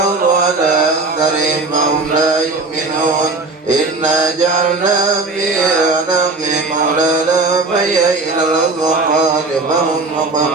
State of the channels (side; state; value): left; quieter; 3.5 dB